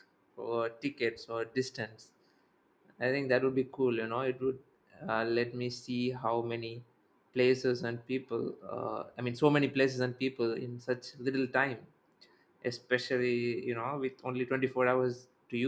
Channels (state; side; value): identical; both; correlation 1.00